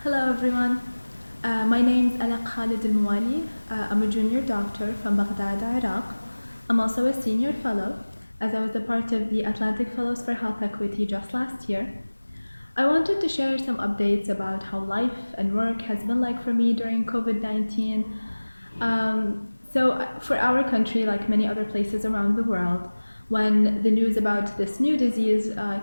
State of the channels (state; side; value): inverted; both; correlation -1.00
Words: Hello everyone. My name is Alaq Al-Muwali. I'm a junior doctor from Baghdad, Iraq. I'm also a senior fellow, as I was a part of the Atlantic Fellows for Health Equity just last year. I wanted to share some updates about how life and work has been like for me during COVID-19. Um, for our country, like many other places around the world, when the news about this new disease